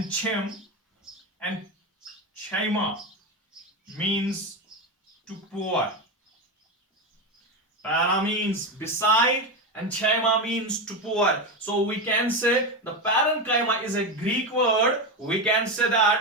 chem and chyma means to pour. Para means beside and chyma means to pour. So we can say the parenchyma is a Greek word. We can say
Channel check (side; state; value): both; normal; correlation 0.15